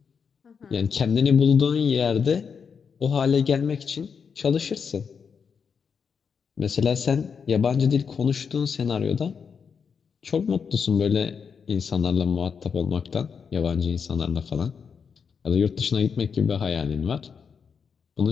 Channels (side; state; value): right; quieter; 6.3 dB